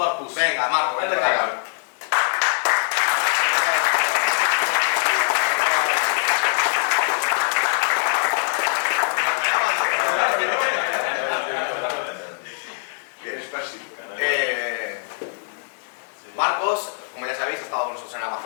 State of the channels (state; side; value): silent; right; 64 dB below the other